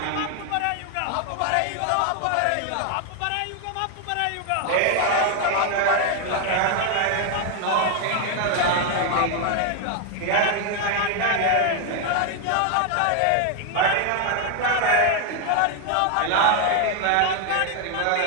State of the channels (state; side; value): different; both; correlation 0.01